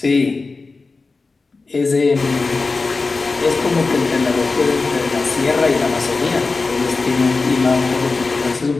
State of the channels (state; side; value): quieter; right; 3.9 dB